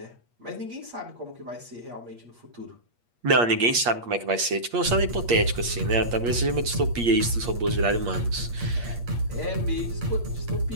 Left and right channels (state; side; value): late; left; 8.5 ms